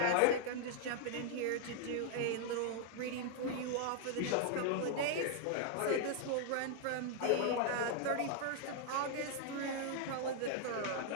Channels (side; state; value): both; different; correlation 0.00